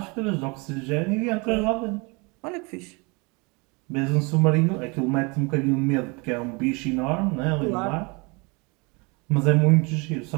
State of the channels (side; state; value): left; quieter; 28.9 dB